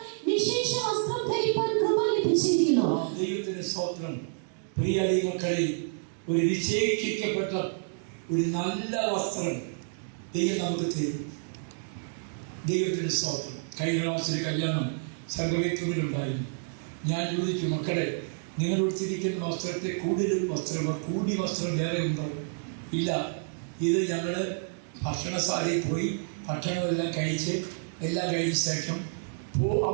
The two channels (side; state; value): left; silent; 58 dB below the other